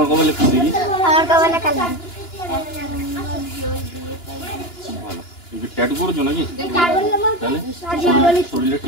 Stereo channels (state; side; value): late; right; 2.9 ms